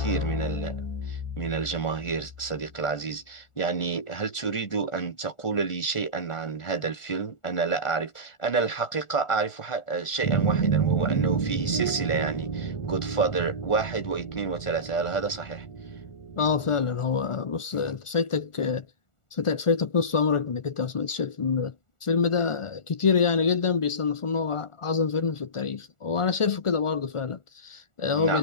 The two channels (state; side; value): late; right; 1.4 ms